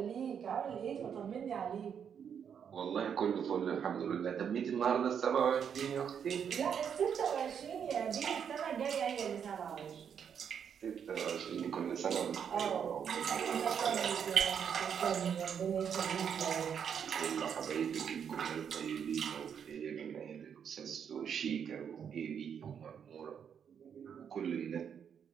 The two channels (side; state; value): left; quieter; 7.7 dB